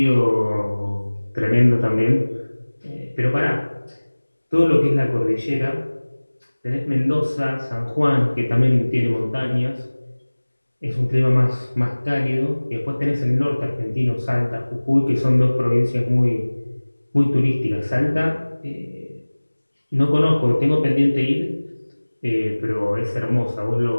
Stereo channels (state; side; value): inverted; both; correlation -1.00